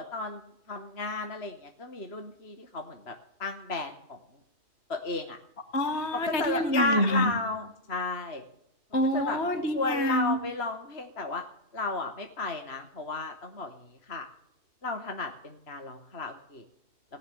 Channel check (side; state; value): right; late; 3.1 ms